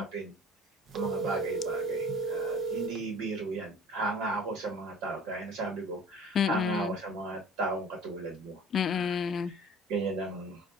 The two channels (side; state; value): both; normal; correlation 0.44